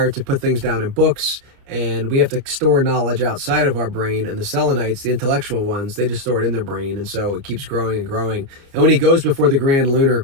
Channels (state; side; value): late; left; 30 ms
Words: to put things down in books, and we have to store knowledge outside of our brain. And the Selenites, the intellectual ones, they just store it in their brain, and so it keeps growing and growing. And when he goes before the Grand Lunar,